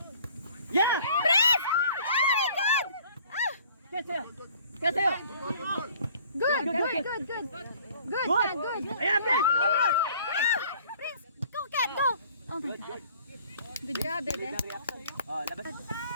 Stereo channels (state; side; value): inverted; both; correlation -0.54